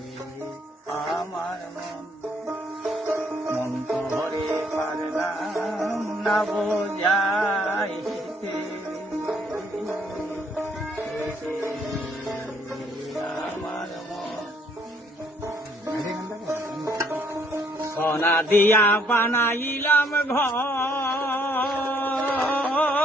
আমার মন তো ধরে পারলাম না বোঝাইতে। আমার সোনা দিয়া বানাইলাম ঘর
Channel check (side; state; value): both; normal; correlation 0.67